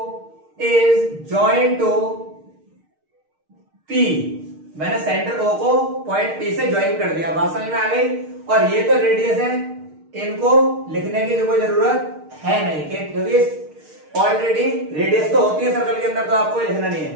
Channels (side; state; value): left; late; 6.5 ms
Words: is joined to P, मैंने सेंटर O को पॉइंट P से ज्वाइन कर दिया, बात समझ में आ गई। और ये तो रेडियस है, इनको लिखने की जो कोई जरूरत है नहीं, क्योंकि ऑलरेडी रेडियस तो होती है सर्कल के अंदर, तो आपको लिखना नहीं